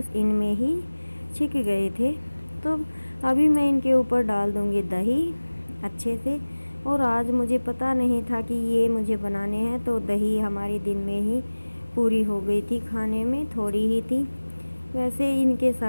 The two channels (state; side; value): inverted; both; correlation -1.00